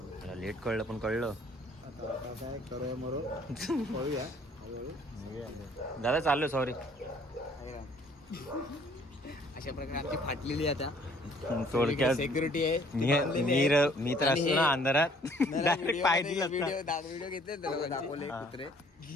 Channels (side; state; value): both; normal; correlation 0.59